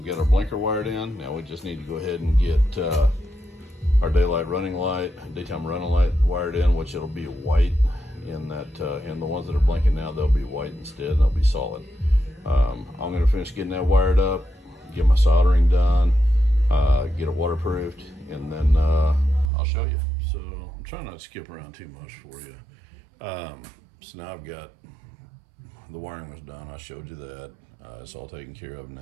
got our blinker wired in. Now we just need to go ahead and get our daytime running light wired in, which it'll be white in that, and the ones that are blinking now, they'll be white instead, and they'll be solid. I'm gonna finish getting that wired up, get my soldering done, get it waterproofed, and then I'll show you. So I'm trying not to skip around too much for you. So now I've got, the wiring was done, I showed you that. It's all taken care of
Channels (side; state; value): left; drops out; at 19.5 s